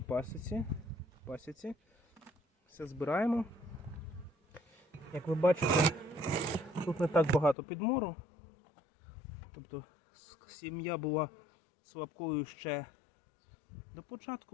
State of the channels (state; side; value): drops out; right; at 7.6 s